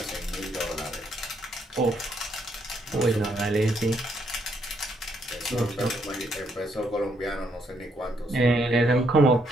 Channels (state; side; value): normal; both; correlation 0.73